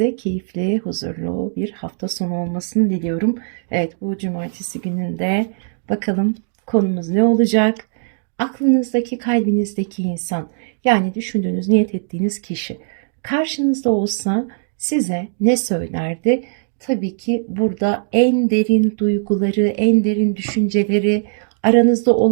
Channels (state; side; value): silent; left; digital silence